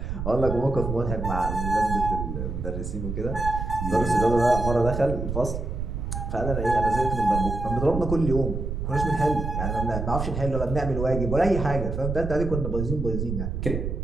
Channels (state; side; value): noise; right; rumble, 4 dB below the sound